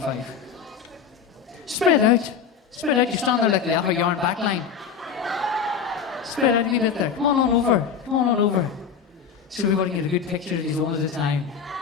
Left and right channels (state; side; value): quieter; right; 6.8 dB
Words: five. Spread out. Spread out. You stand there like the upper yarn back line. Spread out a wee bit there. Come on over. Come on over. So everybody can get a good picture of these one at a time.